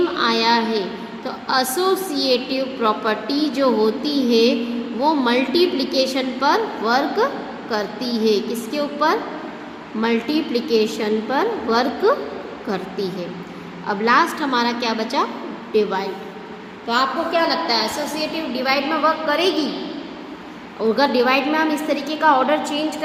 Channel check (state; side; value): identical; both; correlation 1.00